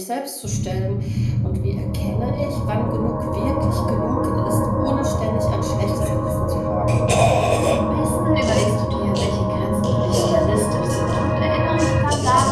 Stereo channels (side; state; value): both; identical; correlation 1.00